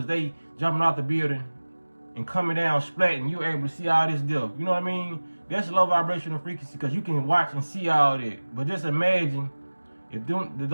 they jumping off the building and coming down splat, and you're able to see all this stuff. You know what I mean? That's low vibrational frequency because you can watch and see all that. But just imagine if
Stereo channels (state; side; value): inverted; both; correlation -1.00